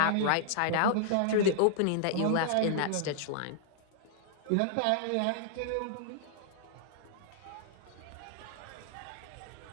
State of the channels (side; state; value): both; different; correlation -0.01